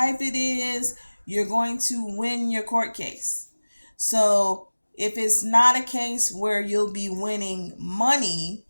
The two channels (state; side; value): inverted; both; correlation -1.00